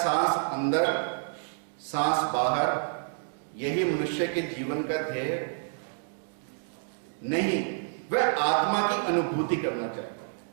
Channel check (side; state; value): left; silent; digital silence